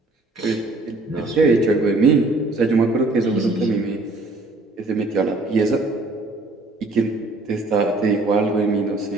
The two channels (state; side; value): quieter; left; 3.0 dB